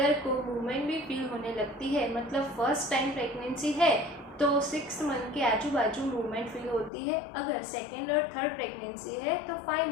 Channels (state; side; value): drops out; right; at 6.9 s